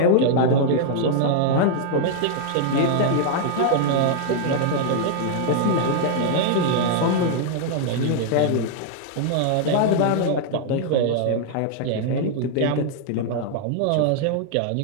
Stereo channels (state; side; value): different; both; correlation -0.01